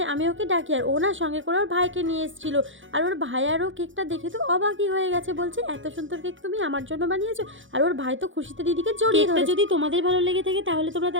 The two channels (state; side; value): late; left; 0.56 ms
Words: আমি ওকে ডাকি, আর ও না সঙ্গে করে ওর ভাইকে নিয়ে এসেছিল, আর ওর ভাই আরও কেকটা দেখে তো অবাকই হয়ে গেছে, বলছে এত সুন্দর কেক তুমি আমার জন্য বানিয়েছো। আর ওর ভাই তো খুশিতে দিদিকে জড়িয়ে ধরেছে। যদি তোমাদের ভালো লেগে থাকে তাহলে তোমরা